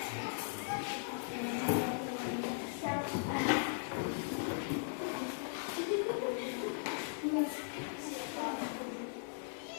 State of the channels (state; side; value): silent; right; 52 dB below the other